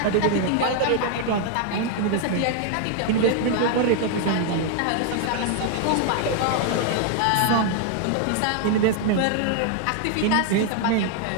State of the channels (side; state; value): both; different; correlation 0.00